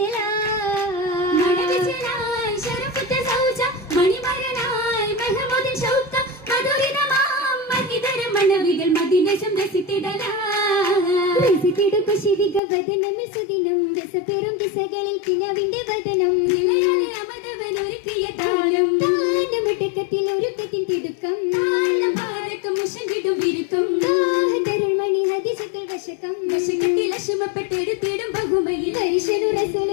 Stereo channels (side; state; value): right; drops out; at 12.6 s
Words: മണവിച്ചലായി ശരഫുറ്റ സൗജ മണിമരനായി മെഹ്മൂദിൻ ഷൗക്ക മധുരിതമാം മഹിതര മണവികൾ മദീനശം രസിത്തിടു കുശിവിക വദനമിൽ സുദിനം രസപെറും ദിശകളിൽ കിനാവിന്റെ വദനം നിലയാലെ അമതവനൊരുക്കിയ താരം താനമിടക്കത്തിൽ ഒരുക്കത്തിൻ തിടുക്കം താളഭാരക്കം മുഷങ്കിടും വിരുക്കം താഹതരുൾ മണി ഹദിസത്തുൽ വശകം വശകത്തിൽ അശുമപ്പെട്ടെടുത്തിടും ബഹുമയിൽ ഹരിശനു